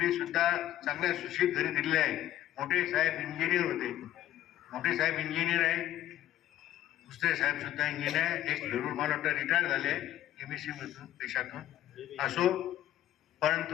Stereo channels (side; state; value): right; quieter; 13.1 dB